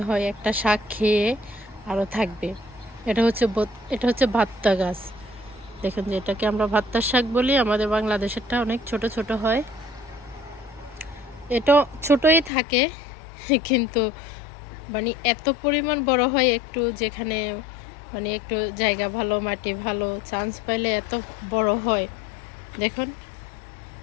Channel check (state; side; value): drops out; right; at 12.5 s